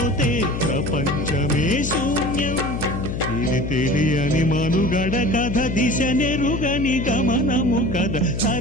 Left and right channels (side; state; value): left; noise; hum, 4 dB below the sound